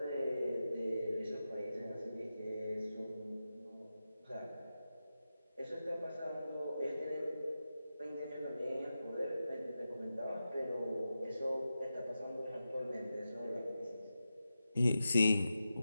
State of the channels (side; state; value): both; inverted; correlation -0.91